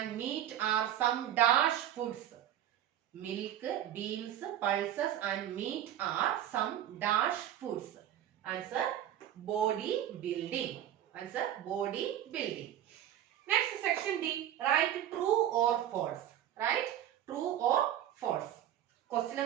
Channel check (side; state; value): left; quieter; 11.4 dB